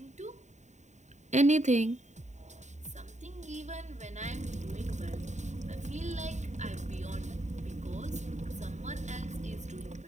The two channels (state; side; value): late; left; 0.34 ms